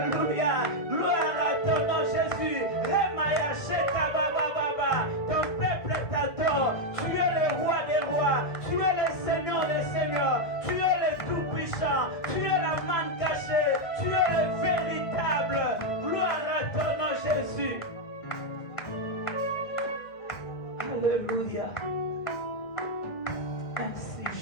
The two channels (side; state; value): right; late; 2.1 ms